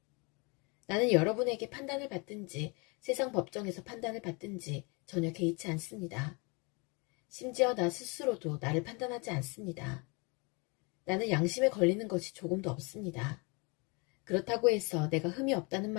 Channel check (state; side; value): quieter; right; 30.3 dB